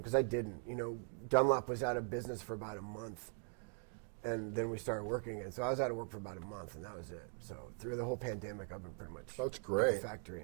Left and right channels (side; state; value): left; silent; 50 dB below the other